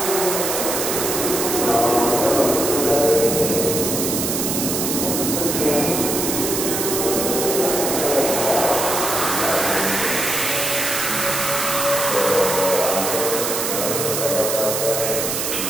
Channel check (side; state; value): right; noise; hiss, 1 dB below the sound